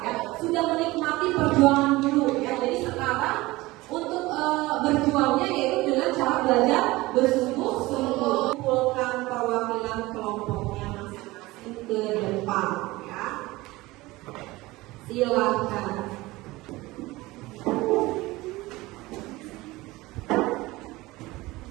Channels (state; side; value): quieter; left; 20.1 dB